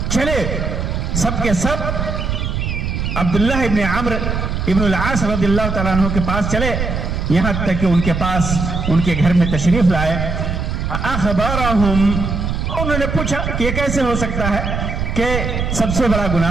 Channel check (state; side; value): noise; right; rumble, 2 dB below the sound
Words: چلے سب کے سب عبداللہ ابن عمرو ابن العاص رضی اللہ تعالیٰ عنہ کے پاس چلے، یہاں تک کہ ان کے پاس ان کے گھر میں تشریف لائے. اخبرہم، انہوں نے پوچھا کہ یہ کیسے ہو سکتا ہے کہ سب سے بڑا